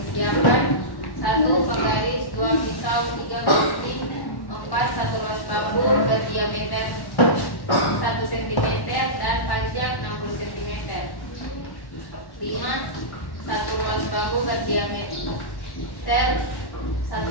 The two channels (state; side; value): late; right; 1.1 ms